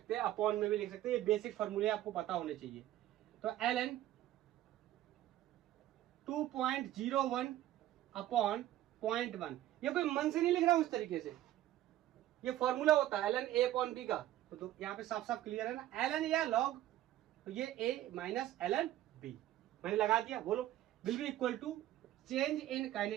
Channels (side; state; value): left; quieter; 13.7 dB